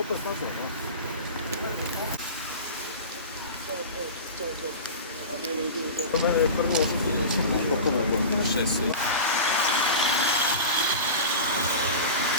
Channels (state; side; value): inverted; both; correlation -0.31